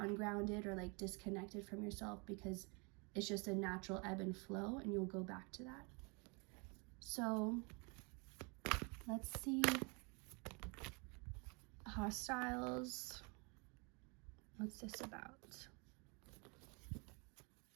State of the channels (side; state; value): left; quieter; 32.0 dB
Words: or like disconnected from yourself, because it's just a natural ebb and flow, and you'll go back to that. So let's see. Hostiles. What's this about?